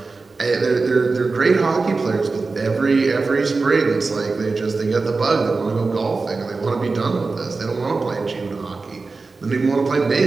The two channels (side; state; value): left; quieter; 4.0 dB